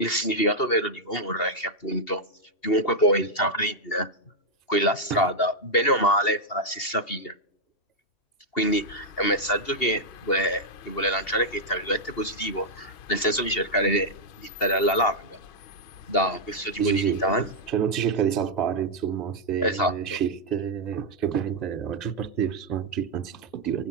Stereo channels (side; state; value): right; late; 2.8 ms